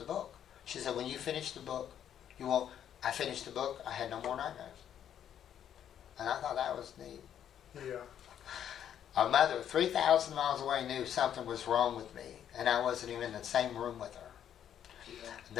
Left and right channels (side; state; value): right; quieter; 9.7 dB